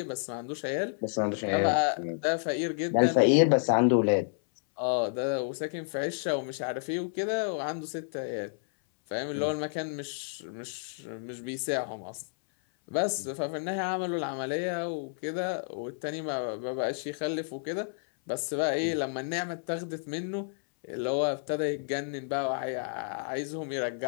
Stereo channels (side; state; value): right; silent; 58 dB below the other